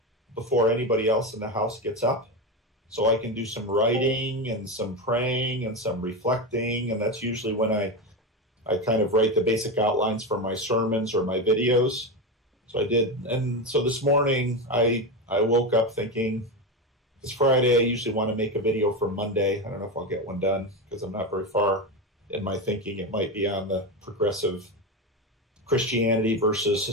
before anybody else in the house gets up, so I can do some writing and some praying and some reflecting, and that's usually when I kind of write the basic outlines for my sermons or my videos. So I did, and so this morning I woke up thinking, it's Friday, I usually want to make a video for Monday. I don't know if I'll get one done because I'm not very far in my thinking. It might be on the progressive Christianity versus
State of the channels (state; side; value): normal; both; correlation 0.16